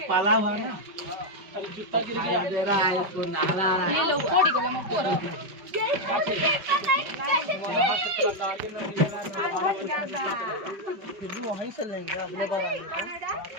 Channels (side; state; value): left; late; 5.2 ms